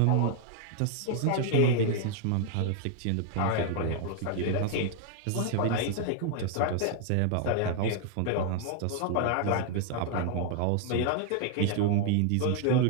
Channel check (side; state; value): both; different; correlation 0.00